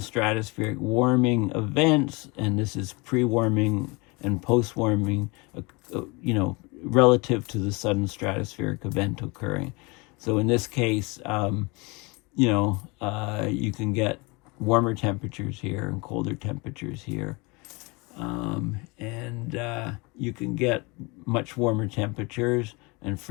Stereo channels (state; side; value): quieter; right; 27.2 dB